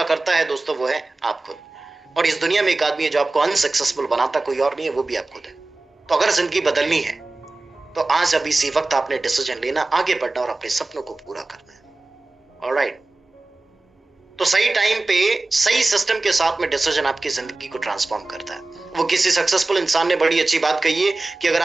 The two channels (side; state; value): left; quieter; 3.2 dB